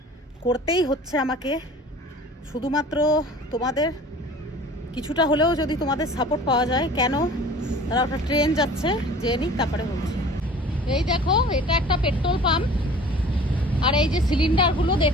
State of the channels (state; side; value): normal; both; correlation 0.45